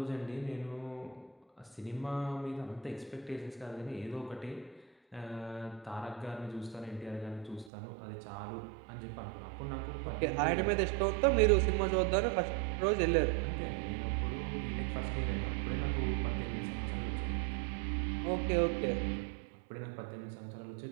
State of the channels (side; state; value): left; drops out; at 7.7 s